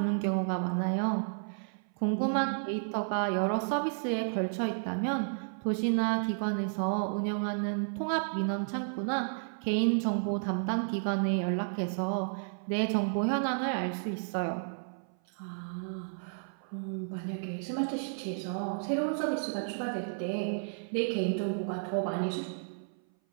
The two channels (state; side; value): silent; left; 56 dB below the other